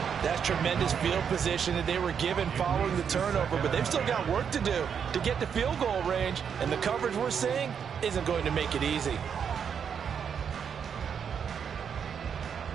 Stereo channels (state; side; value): quieter; left; 7.4 dB